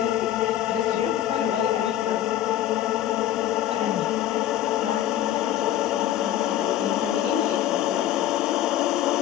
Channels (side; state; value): right; quieter; 12.4 dB